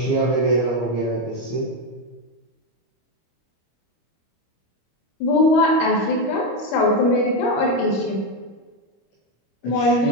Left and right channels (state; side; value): late; right; 25 ms